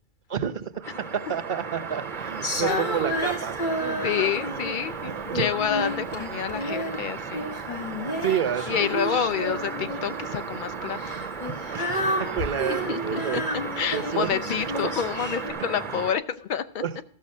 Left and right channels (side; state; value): right; late; 2.3 ms